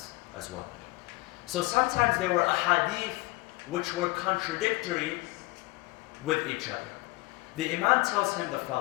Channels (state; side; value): quieter; right; 22.8 dB